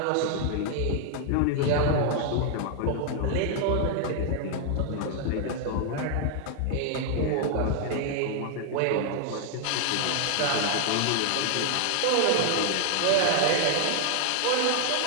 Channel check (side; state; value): both; different; correlation 0.00